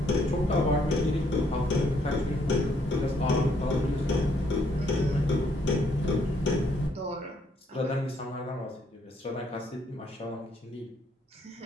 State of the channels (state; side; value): normal; both; correlation 0.70